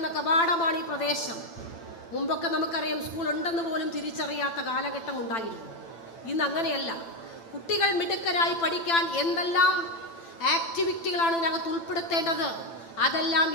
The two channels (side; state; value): right; late; 8.9 ms